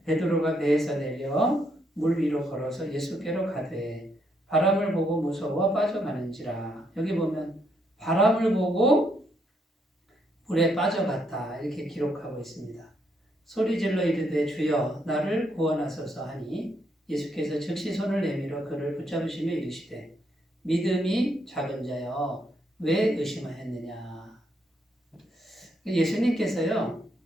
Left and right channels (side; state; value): both; normal; correlation 0.75